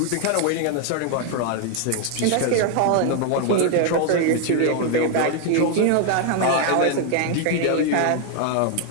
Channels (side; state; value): both; different; correlation 0.00